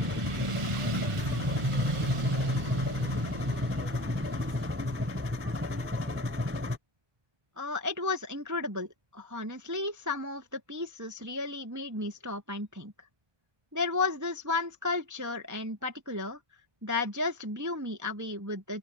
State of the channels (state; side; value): late; left; 1.4 ms